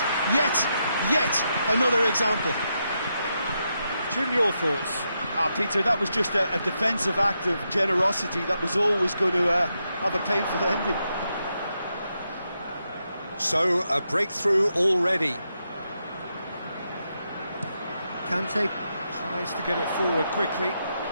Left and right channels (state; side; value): inverted; both; correlation -0.83